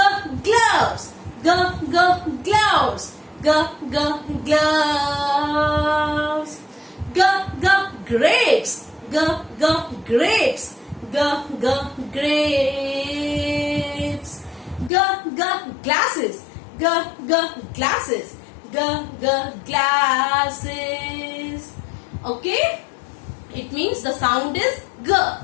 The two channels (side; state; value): right; drops out; at 14.9 s